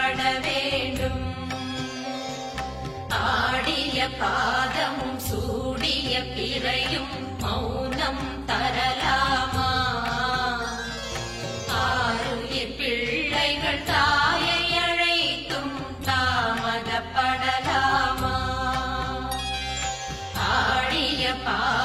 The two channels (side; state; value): both; identical; correlation 1.00